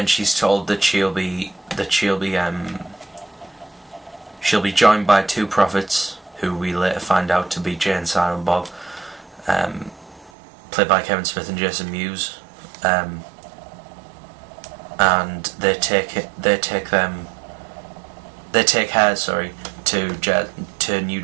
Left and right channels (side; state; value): left; drops out; at 10.3 s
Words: she's told that she'll be joined by 2 prophets, who we later find out to be Jay and Silent Bob, played by Kevin Smith and Jason Mewes. And they take her to New